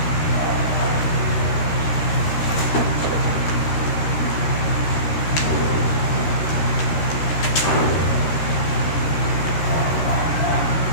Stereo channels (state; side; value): late; right; 13 ms